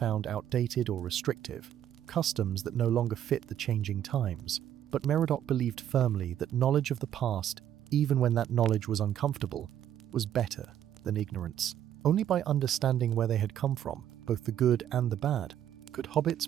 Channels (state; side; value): quieter; left; 10.7 dB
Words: outdated or restrictive, customs that no longer fit the changing times. But Meriadoc believed firmly that knowledge of the past, even when that knowledge was uncomfortable, was better than ignorance. Only by understanding where they had come from, both the good and the bad, could